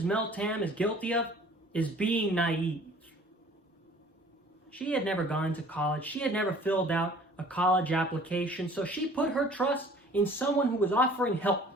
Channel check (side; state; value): both; normal; correlation 0.51